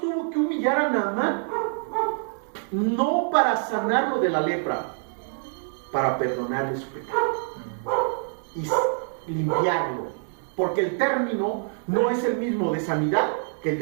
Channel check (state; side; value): silent; left; digital silence